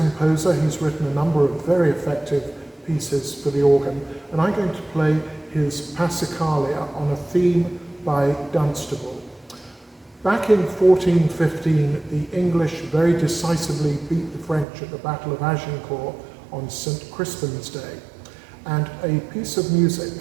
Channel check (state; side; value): drops out; left; at 14.7 s